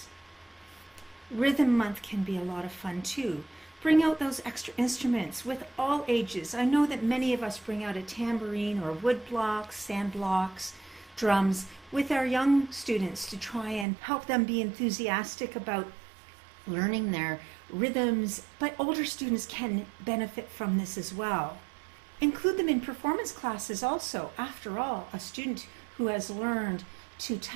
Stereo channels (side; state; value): left; drops out; at 13.9 s